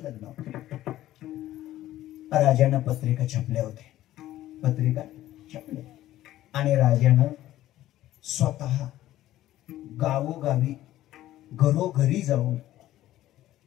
लग्न होतं. राजानं पत्रिका छापल्या होत्या, पत्रिका छापल्या, आणि राजानं स्वतः गावोगावी घरोघरी जाऊन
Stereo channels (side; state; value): right; quieter; 14.3 dB